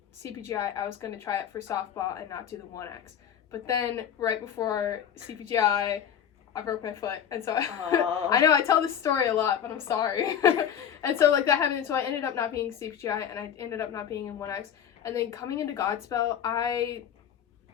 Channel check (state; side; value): quieter; right; 8.9 dB